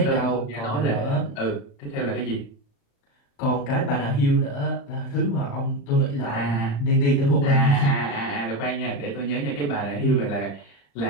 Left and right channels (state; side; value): late; right; 35 ms